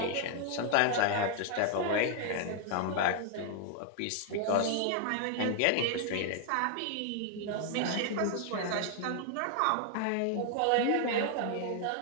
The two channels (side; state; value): both; different; correlation 0.00